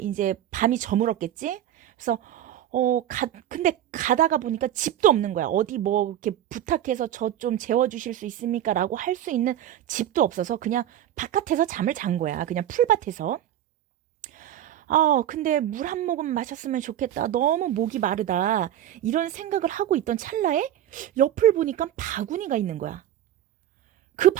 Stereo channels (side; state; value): left; quieter; 11.6 dB